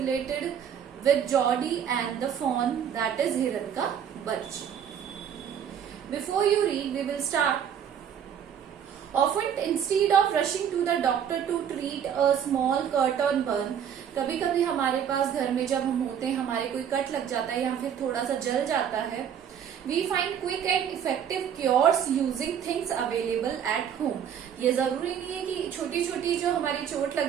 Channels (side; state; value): left; quieter; 8.6 dB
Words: with Geordie and the fawn, that is हिरन का बच्चा. Before you read, we will start. Often instead of rushing to the doctor to treat a small cut or burn, कभी कभी हमारे पास घर में जब हम होते हैं, हमारे कोई कट लग जाता है या फिर थोड़ा सा जल जाता है, we find quick and effective cures using things available at home. ये जरूरी नहीं है कि छोटी छोटी जो हमारी चोट लग